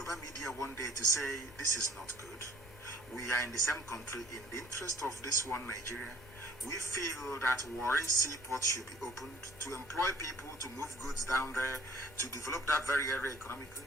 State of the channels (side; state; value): left; noise; rumble, 23 dB below the sound